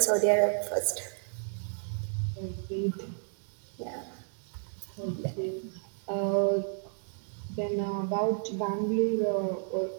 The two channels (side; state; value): left; silent; digital silence